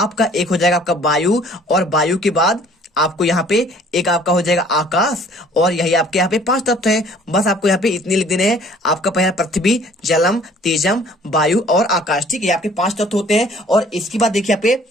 एक हो जाएगा आपका वायु, और वायु के बाद आपको यहाँ पे एक आपका हो जाएगा आकाश। और यही आपके यहाँ पे 5 तत्व हैं। बस आपको यहाँ पे इतने लिख देने हैं। आपका पहला पृथ्वी, जलम, तेजम, वायु और आकाश, ठीक है, आपके 5 तत्व होते हैं। और इसके बाद देखिए यहाँ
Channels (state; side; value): normal; both; correlation 0.55